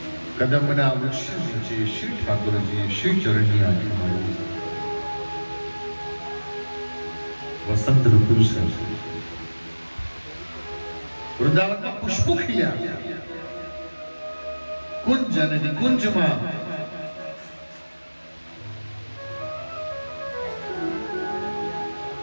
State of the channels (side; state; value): both; inverted; correlation -1.00